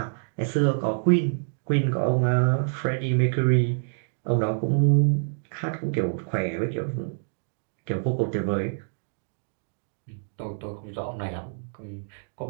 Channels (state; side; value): silent; left; digital silence